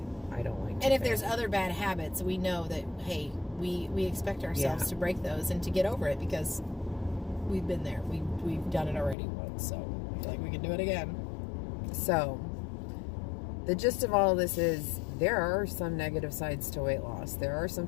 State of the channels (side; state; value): right; drops out; at 9.2 s